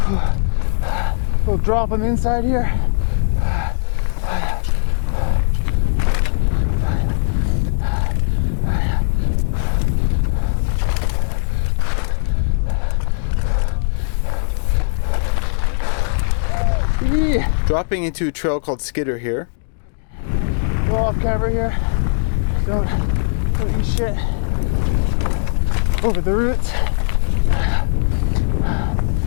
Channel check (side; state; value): right; silent; digital silence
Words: Little drop on the inside here. Dropping into a trail called Skidder here. Go off camera here. Don't eat shit. over the roots.